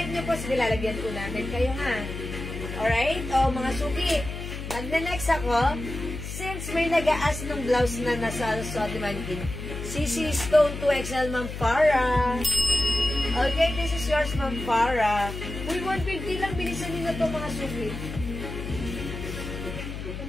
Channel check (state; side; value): noise; left; hum, 7 dB below the sound